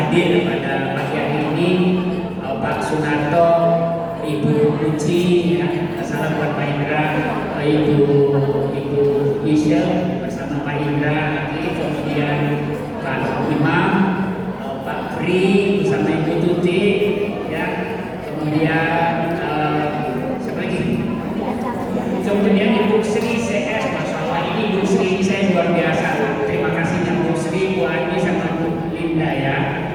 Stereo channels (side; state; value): both; identical; correlation 1.00